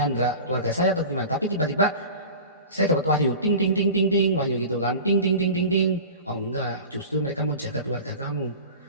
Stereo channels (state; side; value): inverted; both; correlation -0.36